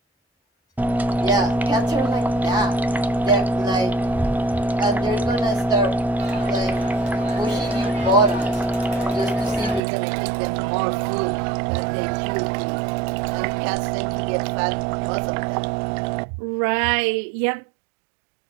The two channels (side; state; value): left; drops out; at 9.8 s